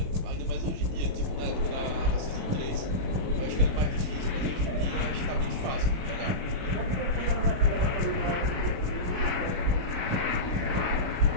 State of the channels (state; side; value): late; left; 38 ms